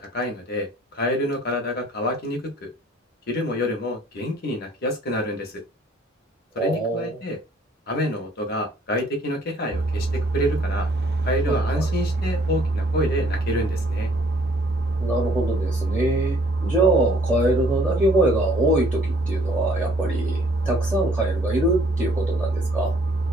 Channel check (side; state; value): both; normal; correlation 0.61